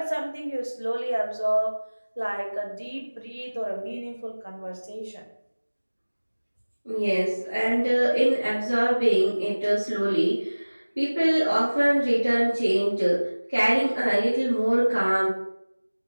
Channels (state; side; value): inverted; both; correlation -1.00